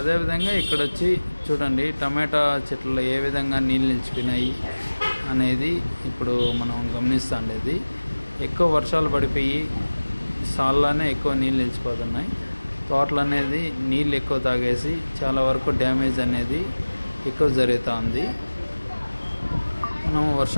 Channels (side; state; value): both; inverted; correlation -1.00